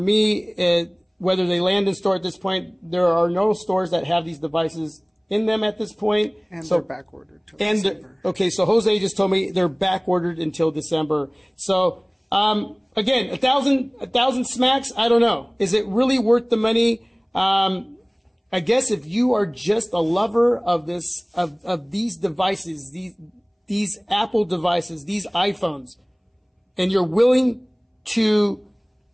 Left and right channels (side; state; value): both; identical; correlation 1.00